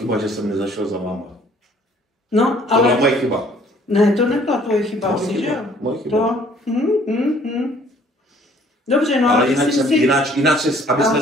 že jsem nezašel za váma. No, ale... To byla moje chyba. Ne, to nebyla tvoje chyba, že jo? Moje chyba. Dobře, no ale jinak,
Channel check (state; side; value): normal; both; correlation 0.58